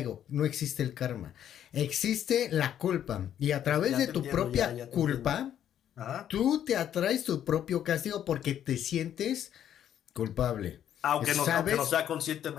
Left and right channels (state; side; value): quieter; right; 10.3 dB